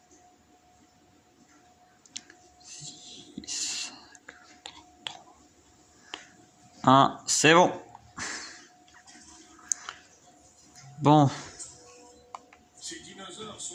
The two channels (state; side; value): identical; both; correlation 1.00